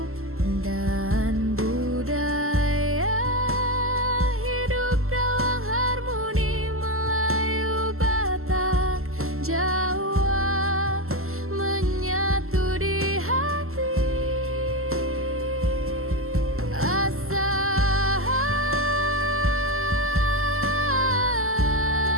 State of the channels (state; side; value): late; left; 0.62 ms